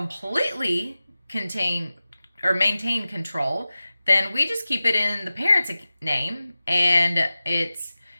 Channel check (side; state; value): both; inverted; correlation -0.95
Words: maintain control, then we just keep it in the parent's name, and it's